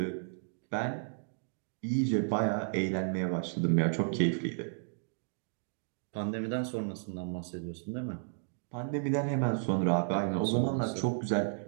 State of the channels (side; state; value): left; silent; digital silence